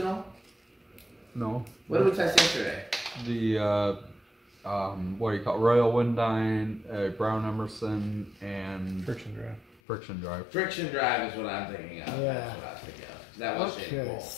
No. What did we test yesterday? The what do you call it? Royal Windine, Brown Emerson, and Friction drive. Friction Drive. Friction drive is what I'm thinking of. Yeah. That's what I was thinking of. That was shaded Okay. pole.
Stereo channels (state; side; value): drops out; right; at 9.8 s